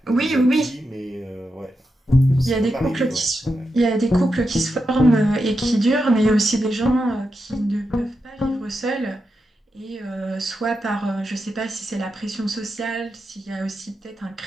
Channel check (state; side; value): normal; both; correlation 0.87